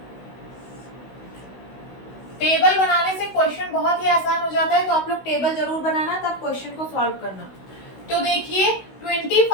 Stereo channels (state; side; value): late; right; 16 ms